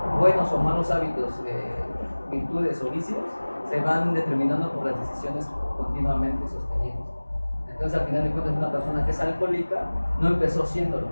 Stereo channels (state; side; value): inverted; both; correlation -1.00